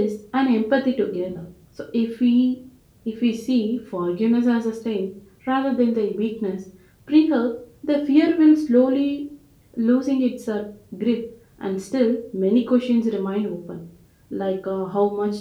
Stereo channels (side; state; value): both; identical; correlation 1.00